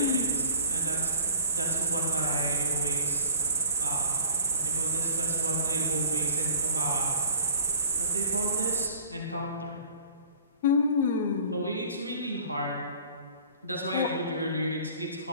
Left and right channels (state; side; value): inverted; both; correlation -0.46